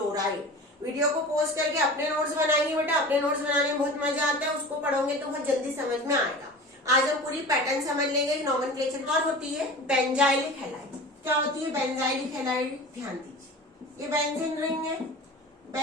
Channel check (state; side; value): normal; both; correlation 0.36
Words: वीडियो को पॉज करके अपने नोट्स बनाएंगे बेटा, अपने नोट्स बनाने में बहुत मजा आता है, उसको पढ़ोगे तो बहुत जल्दी समझ में आएगा। आज हम पूरी पैटर्न समझ लेंगे, नॉमेनक्लेचर। और होती है बेंजाइलिक हैलाइड। क्या होती है बेंजाइलिक हैलाइड, ध्यान दीजिए, ये बेंजीन रिंग है,